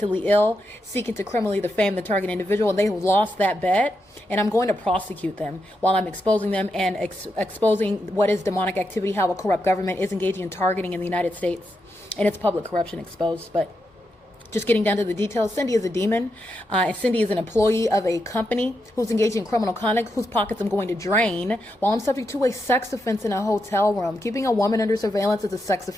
ill, seeking to criminally defame the target individual, and they lost that bet. And I'm going to prosecute them while I'm exposing them and exposing what is demonic activity, how a corrupt government is engaging in targeting in the United States, and its public corruption exposed. But just getting down to the details, Cindy is a demon. And Cindy is an employee of a company who's engaging in criminal conduct, whose pockets I'm going to drain while I'm subject to a sex offense in a hotel room. Keeping a woman under surveillance is a sex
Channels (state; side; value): normal; both; correlation 0.85